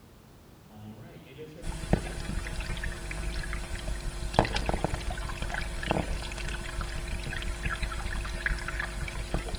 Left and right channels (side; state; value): both; identical; correlation 1.00